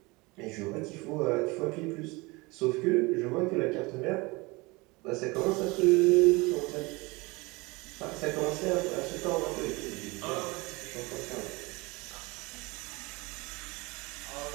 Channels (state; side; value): quieter; left; 24.6 dB